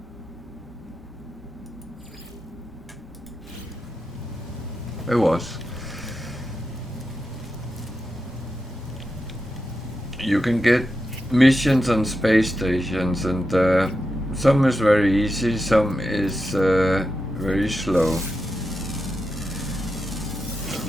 It was. You can get missions on space stations, and some is very easy, some is very slow.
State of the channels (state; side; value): normal; both; correlation 0.88